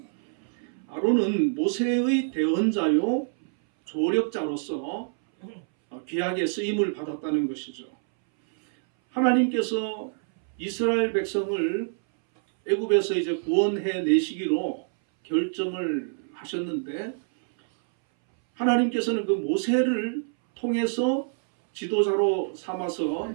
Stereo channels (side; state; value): left; silent; 61 dB below the other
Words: 아론은 모세의 대언자요 조력자로서 귀하게 쓰임을 받았다는 것이죠. 하나님께서 이스라엘 백성을 애굽에서 이제 구원해 내시기로 결정을 하셨는데 하나님께서는 그 모세를 통해서 지도자로 삼아서